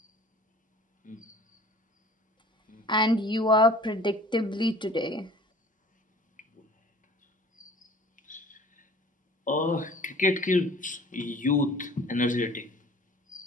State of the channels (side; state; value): both; normal; correlation 0.48